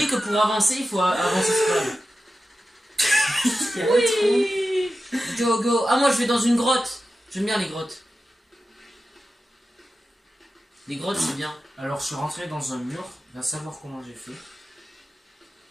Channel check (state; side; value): normal; both; correlation 0.92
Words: que pour avancer il faut avancer scroll. Il y a le trou. Oui. Go go. Ah moi je vais dans une grotte. J'aime bien les grottes. Les grottes c'est bien. Alors, je suis rentré dans un mur. Va savoir comment j'ai fait.